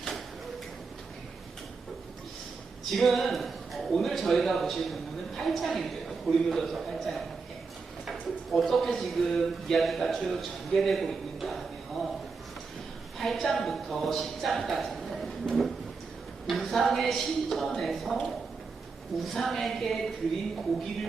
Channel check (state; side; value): quieter; left; 4.6 dB